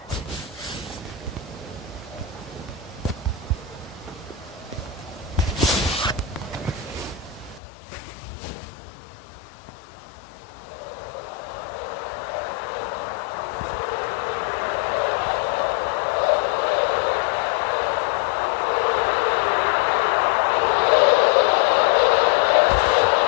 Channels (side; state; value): right; drops out; at 7.6 s